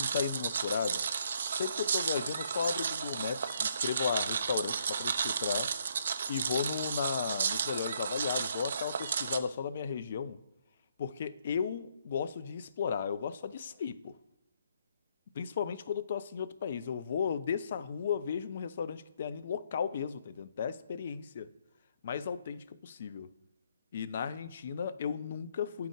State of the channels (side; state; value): both; inverted; correlation -0.70